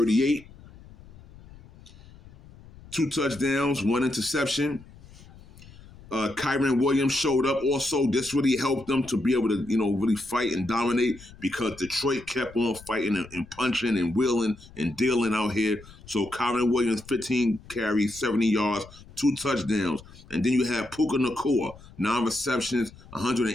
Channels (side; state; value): left; noise; rumble, 21 dB below the sound